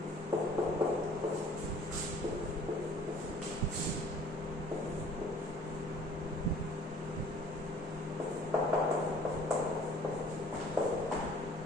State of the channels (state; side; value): normal; both; correlation 0.53